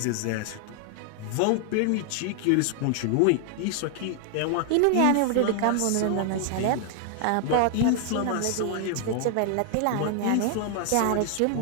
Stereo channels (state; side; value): different; both; correlation 0.00